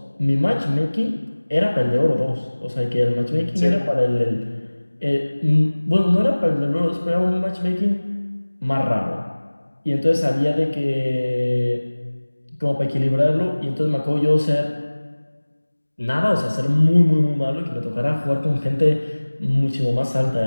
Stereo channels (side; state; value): both; inverted; correlation -1.00